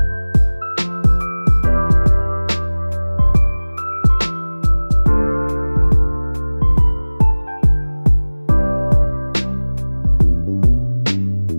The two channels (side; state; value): both; inverted; correlation -1.00